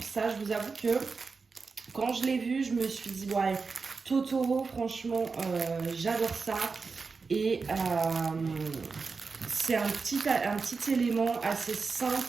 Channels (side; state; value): left; quieter; 4.6 dB